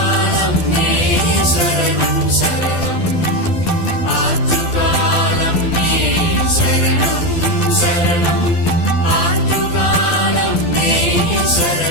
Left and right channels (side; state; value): right; late; 12 ms